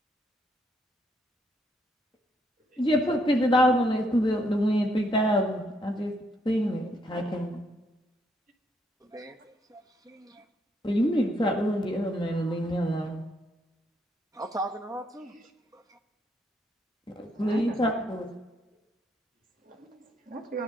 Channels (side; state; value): both; normal; correlation 0.73